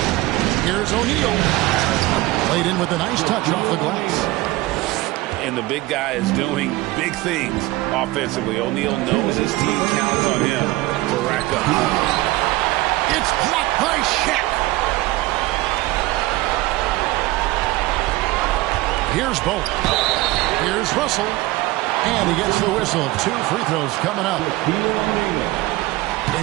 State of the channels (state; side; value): quieter; left; 19.2 dB